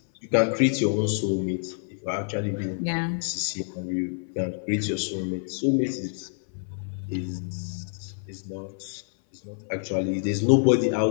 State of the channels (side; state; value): right; silent; 57 dB below the other